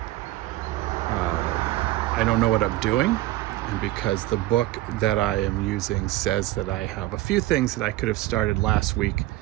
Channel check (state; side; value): quieter; left; 16.6 dB